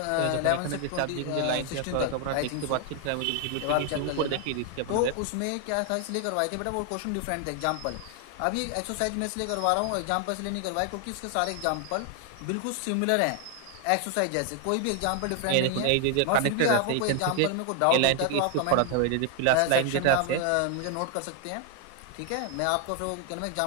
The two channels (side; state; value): both; different; correlation 0.00